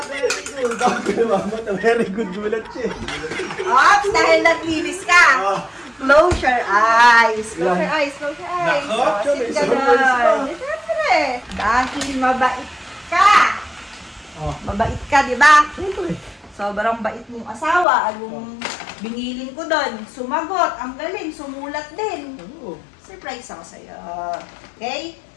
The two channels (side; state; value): right; drops out; at 17.9 s